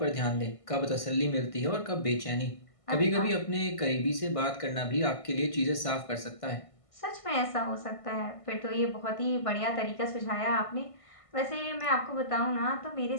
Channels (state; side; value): late; right; 1.5 ms